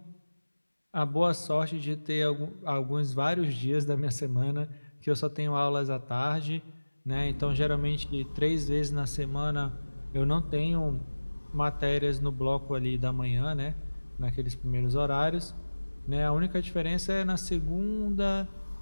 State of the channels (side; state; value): both; inverted; correlation -1.00